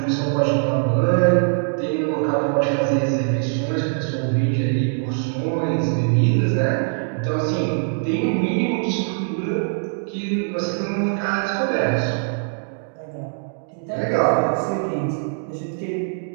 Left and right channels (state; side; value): silent; left; digital silence